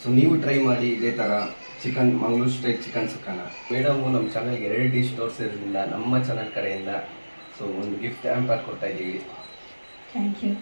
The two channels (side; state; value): both; inverted; correlation -1.00